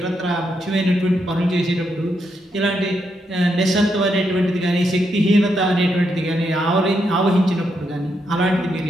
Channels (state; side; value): normal; both; correlation 0.80